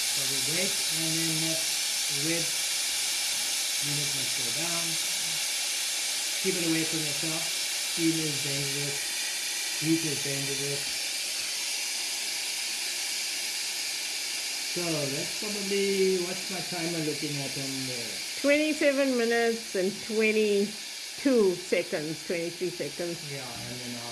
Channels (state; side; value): identical; both; correlation 1.00